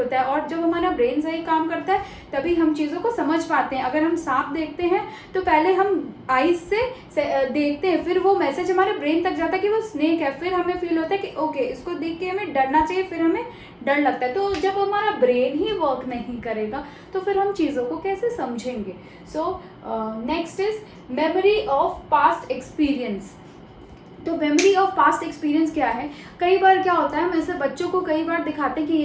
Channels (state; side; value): identical; both; correlation 1.00